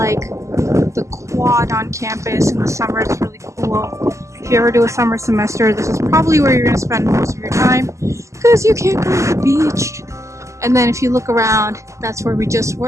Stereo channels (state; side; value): late; left; 0.15 ms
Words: the quad on campus in the summer. It's really cool. If you ever do a summer semester, this is probably where you're going to spend most of your time because you can't go to the beach. And then if you look around, that's where we just